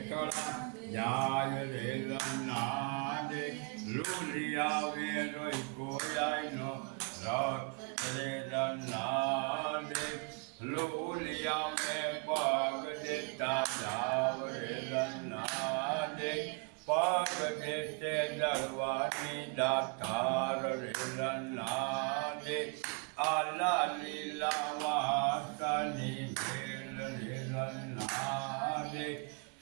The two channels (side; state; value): left; quieter; 35.2 dB